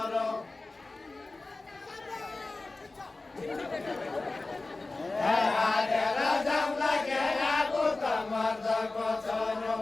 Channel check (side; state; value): right; quieter; 3.3 dB